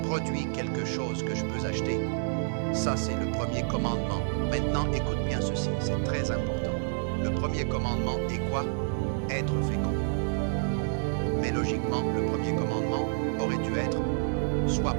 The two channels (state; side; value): silent; left; digital silence